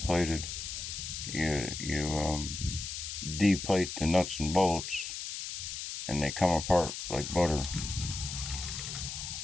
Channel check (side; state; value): left; noise; hiss, 6 dB below the sound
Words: You deplate the nuts and bolts, and they come apart like butter